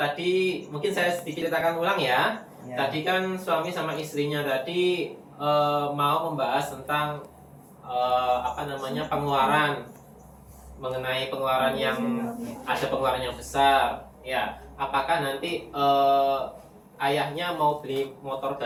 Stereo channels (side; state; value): both; identical; correlation 1.00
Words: mungkin saya sedikit ceritakan ulang ya. Tadi kan suami sama istrinya tadi mau membahas tentang pengeluaran, mengenai pengeluaran yang ada pengeluaran yang besar. Ya, apakah nanti ayahnya mau beli motor